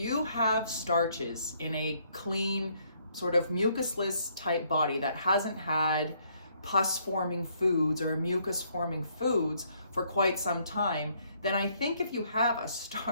have starches in a clean, sort of mucusless type body that hasn't had pus forming foods or mucus forming foods for quite some time, then I think if you have a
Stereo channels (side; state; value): both; inverted; correlation -0.68